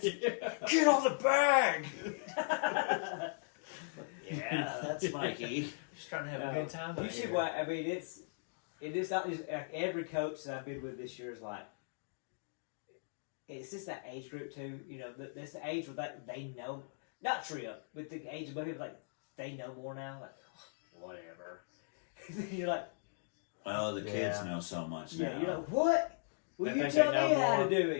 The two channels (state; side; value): silent; right; digital silence